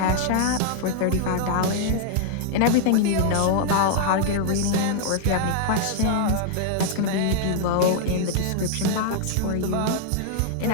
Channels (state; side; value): different; both; correlation -0.01